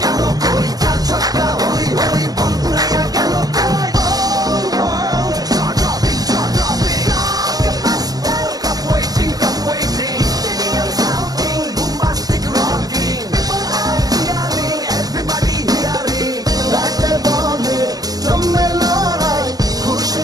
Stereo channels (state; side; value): late; left; 0.18 ms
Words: galo koi. Chaka hoy hoy, bongalaya galo koi. Oh world, jaw dropping, jaw dropping. Blockbuster, cup waiting, cup waiting. Stadium shouting, bombastic rocking. People are cheering, everybody hearing. রাতে বলে জমে লড়াই